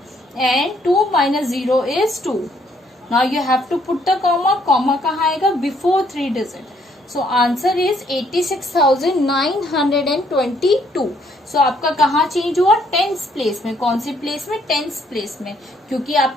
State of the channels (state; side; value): normal; both; correlation 0.68